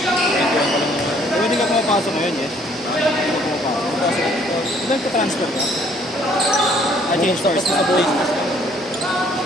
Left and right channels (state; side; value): normal; both; correlation 0.62